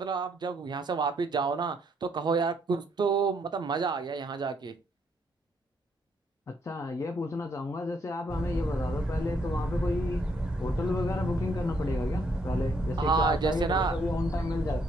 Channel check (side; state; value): both; normal; correlation 0.72